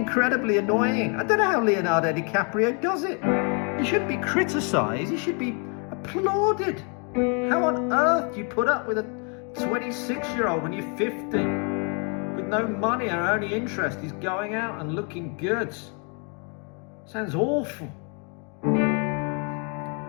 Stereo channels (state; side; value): quieter; right; 37.3 dB